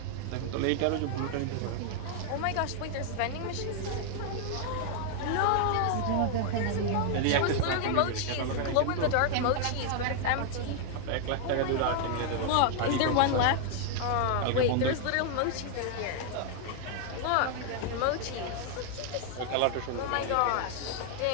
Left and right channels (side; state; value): both; different; correlation 0.00